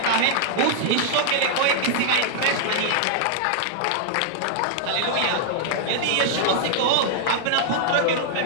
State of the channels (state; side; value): different; both; correlation 0.00